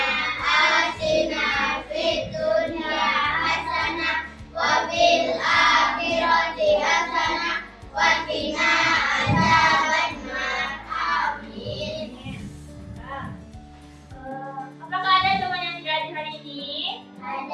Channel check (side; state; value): both; identical; correlation 1.00